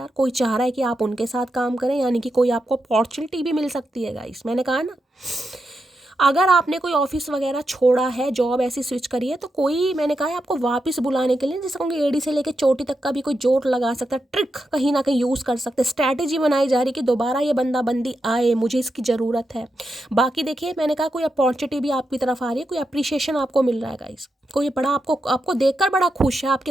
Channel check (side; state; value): both; normal; correlation 0.86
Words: कोई चाह रहा है कि आप उनके साथ काम करें, यानी कि कोई आपको अपॉर्चुनिटी भी मिल सकती है गाइस, मैंने कहा ना। अगर आपने कोई ऑफिस वगैरह छोड़ा है, जॉब ऐसी स्विच करी है, तो कोई, मैंने कहा है आपको वापस बुलाने के लिए, जैसे कहूँगी एडी से लेकर चोटी तक का भी कोई जोड़ लगा सकता है, ट्रिक कहीं ना कहीं यूज़ कर सकते हैं, स्ट्रैटेजी बनाई जा रही है कि दोबारा ये बंदा बंदी आए, मुझे इसकी ज़रूरत है। बाकी देखिए मैंने कहा कोई अपॉर्चुनिटी भी आपकी तरफ आ रही है, कोई अप्रिशिएशन आपको मिल रहा है गाइस, कोई बड़ा आपको देखकर बड़ा खुश है,